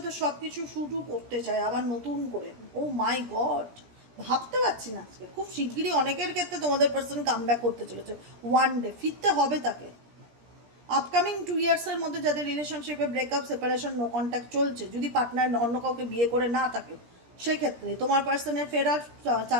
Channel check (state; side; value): late; left; 17 ms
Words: সব কিছু শুরু করতে চায় আবার নতুন করে। ও মাই গড, ভাবতে পারছি না, আজকে খুব শিগগিরই অনেকের ক্ষেত্রে তোমাদের পার্সন কাম ব্যাক করতে চলেছে, ওয়ান ডে ফিরতে হবে তাকে। আপকামিং 2 ইয়ার্সের মধ্যে যাদের রিলেশনশিপে ব্রেকআপ, সেপারেশন, নো কন্ট্যাক্ট চলছে, যদি পার্টনার অন্য কাউকে বিয়ে করে না থাকে, সেক্ষেত্রে তোমার পার্সনের ফেরার